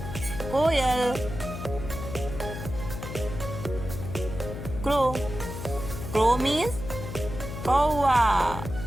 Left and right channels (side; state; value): left; noise; hum, 8 dB below the sound